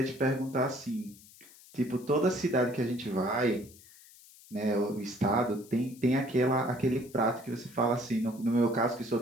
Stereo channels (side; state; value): left; noise; hiss, 23 dB below the sound